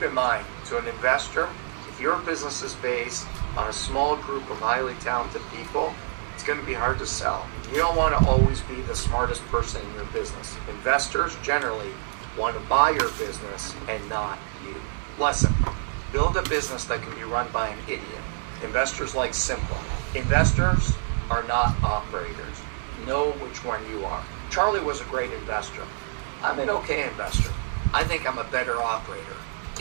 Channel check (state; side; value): silent; left; digital silence